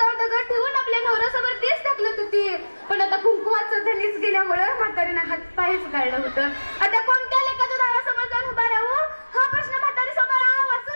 दगड ठेवून आपल्या नवऱ्यासोबत तेच ढकलत होती. पण आता कुंकुवाचं धनीच गेल्यामुळे म्हातारीनं हातपायच गाळलं होतं. आता कोणत्या लेकाच्या दारासमोर जाऊन उभा राहू हा प्रश्न म्हातारी समोर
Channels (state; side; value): inverted; both; correlation -1.00